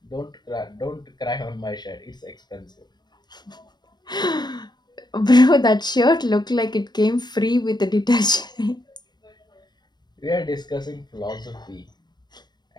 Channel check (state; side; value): late; right; 0.21 ms